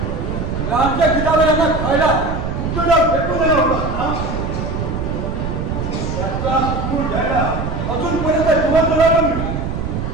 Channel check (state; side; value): noise; right; rumble, 3 dB below the sound